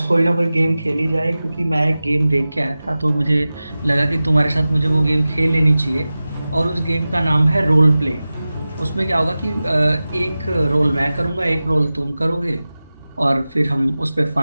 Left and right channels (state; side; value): inverted; both; correlation -0.96